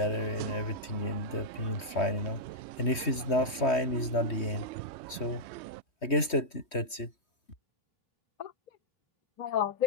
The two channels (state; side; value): late; right; 3.2 ms